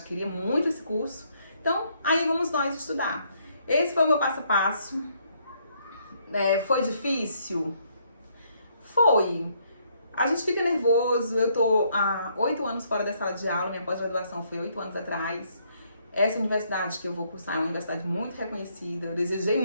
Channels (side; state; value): both; inverted; correlation -0.70